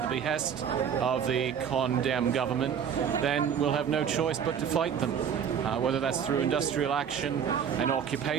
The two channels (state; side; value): quieter; left; 7.8 dB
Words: the behest of the Con Dem government, then we'll have no choice but to fight them. Whether that's through industrial action and